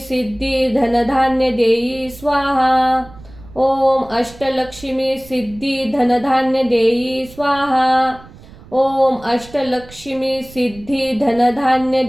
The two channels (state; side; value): noise; right; rumble, 21 dB below the sound